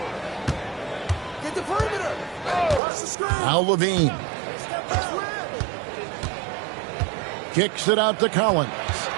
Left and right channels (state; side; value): drops out; left; at 2.8 s